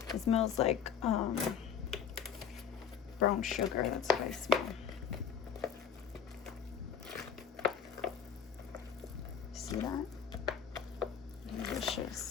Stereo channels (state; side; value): quieter; right; 7.5 dB